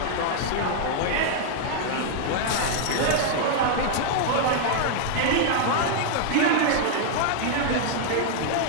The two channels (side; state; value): both; different; correlation 0.00